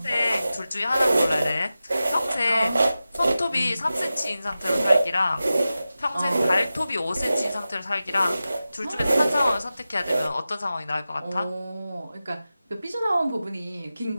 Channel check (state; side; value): inverted; both; correlation -0.94